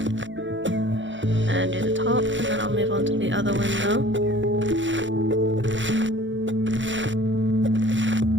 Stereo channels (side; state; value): left; late; 0.55 ms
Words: And do the top, and then I'll move on to the other window.